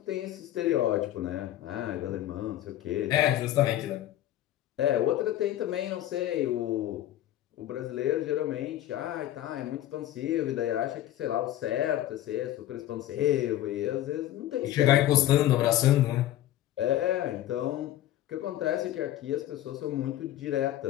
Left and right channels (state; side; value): quieter; right; 13.4 dB